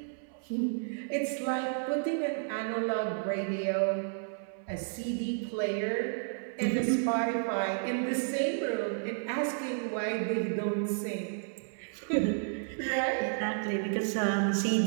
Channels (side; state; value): left; silent; 57 dB below the other